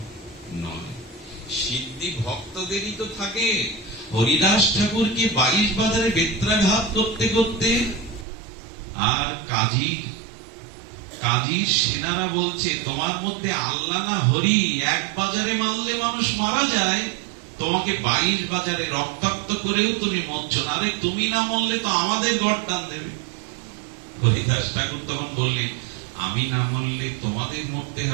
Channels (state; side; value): drops out; left; at 8.2 s